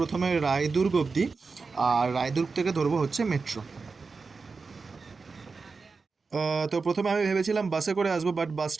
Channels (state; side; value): quieter; left; 4.5 dB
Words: রায়দুর্গ অবধি, আর রায়দুর্গ থেকে ধরবো হচ্ছে মেট্রো। তো প্রথমে আমি ভেবেছিলাম বাসে করে আসবো, বাট